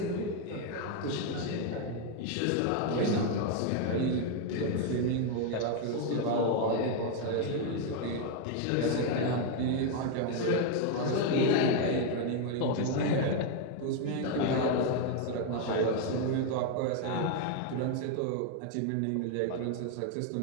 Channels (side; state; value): both; different; correlation 0.01